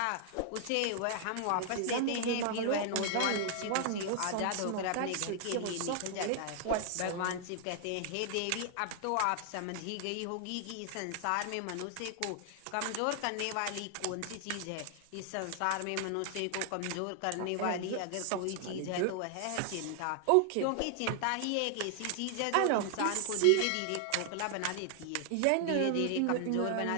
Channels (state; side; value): different; both; correlation 0.00